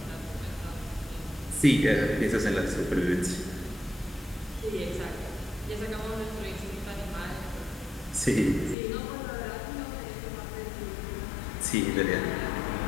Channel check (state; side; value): drops out; right; at 8.8 s